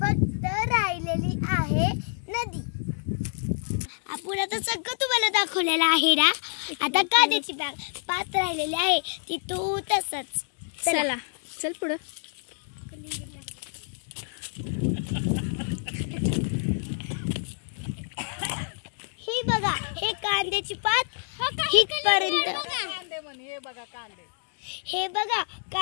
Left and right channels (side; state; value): right; silent; digital silence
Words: राहिलेली आहे नदी. आपण आता सगळं तुम्हाला दाखवलेलं आहे ना. आता कांद्याची बाग पात राहिलेली आहे ती तू तसंच. चला चल पुढं. ही बघा, हे कांद्याची पात हितपर्यंत. हे बघा